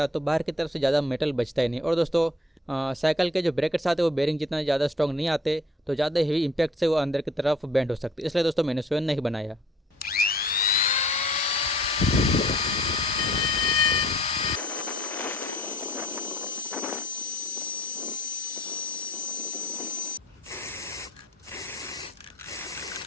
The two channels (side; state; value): both; normal; correlation 0.55